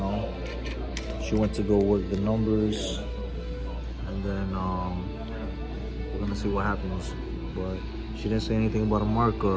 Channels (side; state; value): both; identical; correlation 1.00